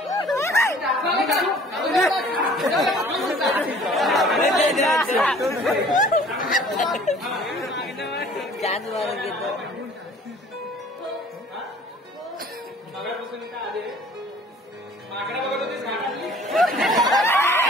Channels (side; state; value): both; normal; correlation 0.52